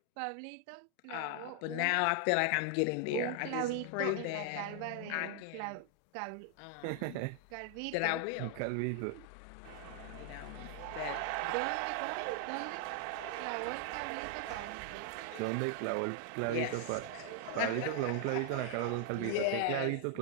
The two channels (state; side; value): different; both; correlation 0.00